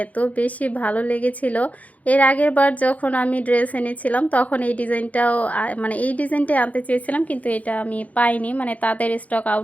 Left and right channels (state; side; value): late; right; 0.072 ms